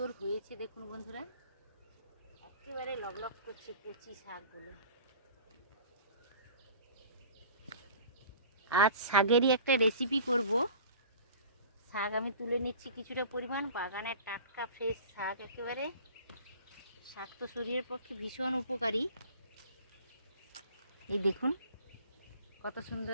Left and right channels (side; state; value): both; inverted; correlation -0.44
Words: হয়েছে দেখুন বন্ধুরা, একেবারে লগলগ করছে কচি শাকগুলো। আজ শাকেরই একটা রেসিপি করব। শাক আমি তুলে নিচ্ছি কিছুটা পরিমাণ, বাগানের টাটকা ফ্রেশ শাক একেবারে। শাক তো শরীরের পক্ষে ভীষণ উপকারী। এই দেখুন কত